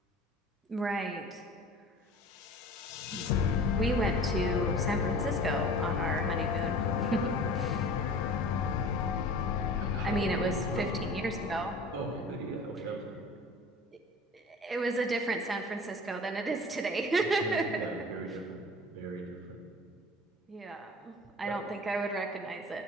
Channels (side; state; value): both; normal; correlation 0.41